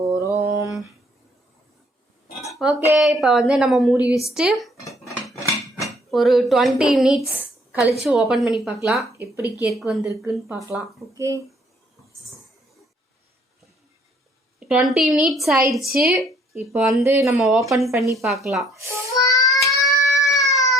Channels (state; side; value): normal; both; correlation 0.63